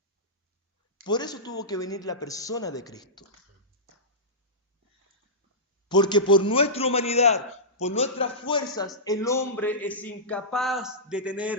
Por eso tuvo que venir la persona de Cristo. Porque por nuestra humanidad, por nuestras fuerzas, el hombre es incapaz de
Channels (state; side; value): normal; both; correlation -0.16